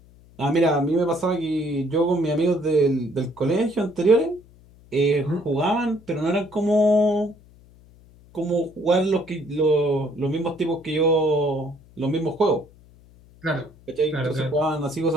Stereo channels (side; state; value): left; noise; hum, 26 dB below the sound